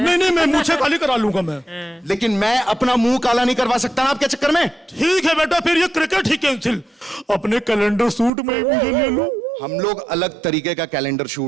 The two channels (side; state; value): left; drops out; at 8.3 s